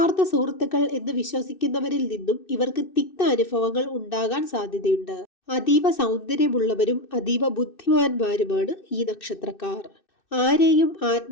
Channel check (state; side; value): late; right; 2.6 ms